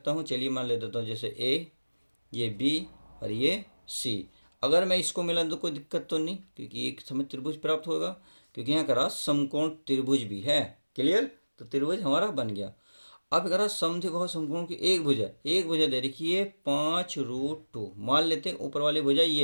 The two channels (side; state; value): both; inverted; correlation -1.00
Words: हूँ, चलिए मान ले देता हूँ, जैसे ए, ये बी और ये सी। अगर मैं इसको मिला तो कोई दिक्कत तो नहीं, क्योंकि एक समय त्रिभुज प्राप्त होगा, क्योंकि यहाँ करा समकोण त्रिभुज भी है। क्लियर, तो त्रिभुज हमारा बन गया। अब करा समद्विबाहु समकोण की एक भुजा दे रखी है 5√2, मान लेते हैं ऊपर वाली भुजा